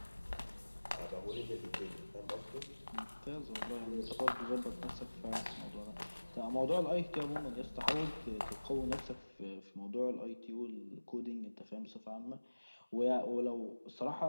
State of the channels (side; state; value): both; inverted; correlation -1.00